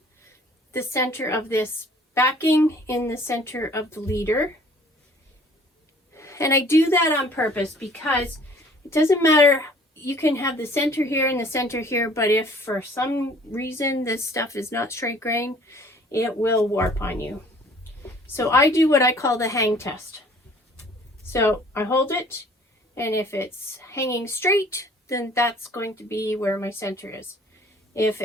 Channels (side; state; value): both; normal; correlation 0.53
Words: the center of this backing in the center of the leader. And I do that on purpose because it doesn't matter, you can have the center here and the center here, but if for some reason this stuff is not straight grain, it will warp on you. So I do what I call the hang test. So I hold it, and if it's hanging straight, then that's going to be where my center is. If